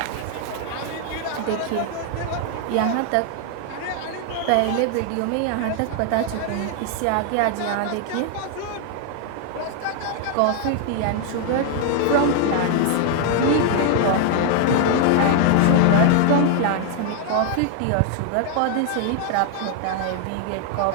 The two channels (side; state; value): both; different; correlation 0.00